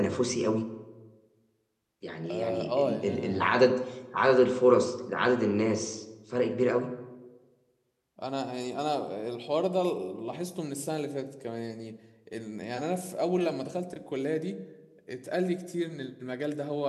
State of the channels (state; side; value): identical; both; correlation 1.00